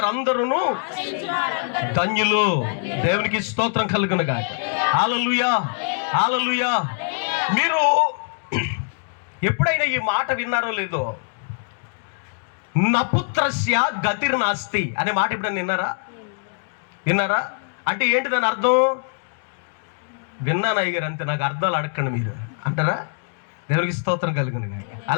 ధన్యులు. దేవునికి స్తోత్రం కలుగునుగా. హల్లెలూయా, హల్లెలూయా. మీరు ఎప్పుడైనా ఈ మాట విన్నారో లేదో, నపుత్రస్య గతిర్నాస్తి అనే మాట ఎప్పుడైనా విన్నారా? అంటే ఏంటి దాని అర్థం? విన్నాను అయ్యగారు, అంతే, నాకు అర్థాలు అడగండి మీరు అంటారా? దేవునికి స్తోత్రం కలుగునుగా.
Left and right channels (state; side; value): silent; right; digital silence